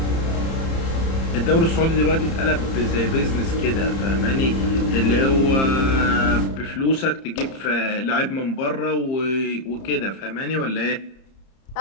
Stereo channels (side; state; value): right; late; 30 ms